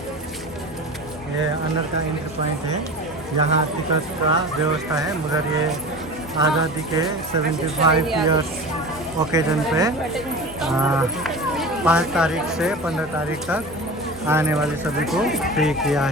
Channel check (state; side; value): normal; both; correlation 0.32